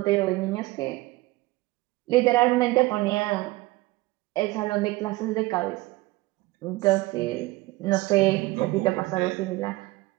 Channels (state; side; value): quieter; left; 20.3 dB